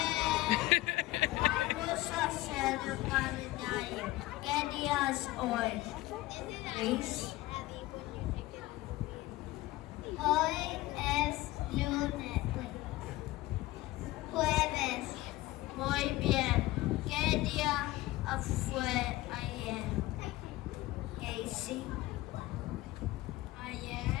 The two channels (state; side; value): quieter; right; 17.7 dB